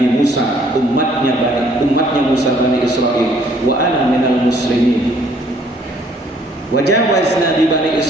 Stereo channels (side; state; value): both; normal; correlation 0.62